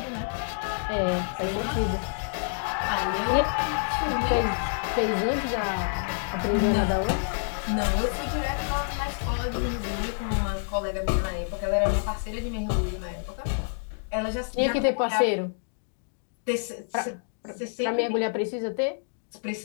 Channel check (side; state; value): right; silent; digital silence